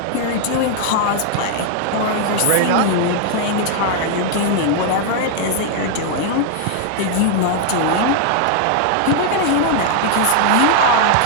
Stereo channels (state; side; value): different; both; correlation 0.00